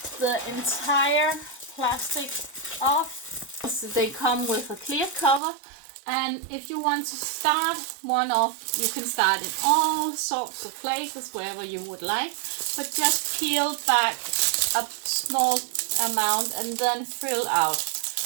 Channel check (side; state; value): left; drops out; at 5.4 s